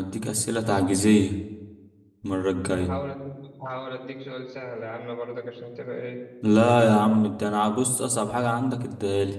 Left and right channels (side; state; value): both; identical; correlation 1.00